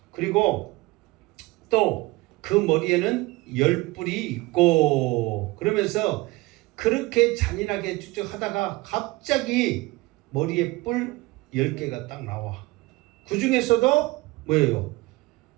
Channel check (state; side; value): quieter; left; 21.5 dB